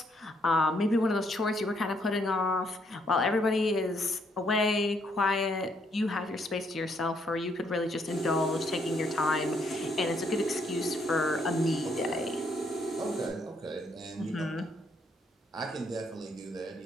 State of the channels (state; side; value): normal; both; correlation 0.72